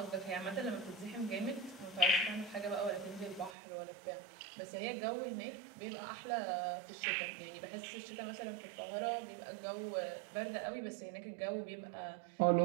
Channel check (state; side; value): drops out; left; at 3.6 s